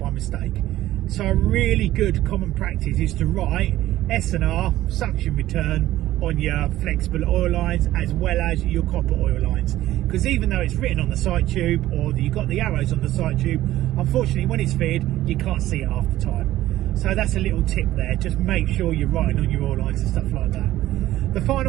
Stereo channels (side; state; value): left; quieter; 14.8 dB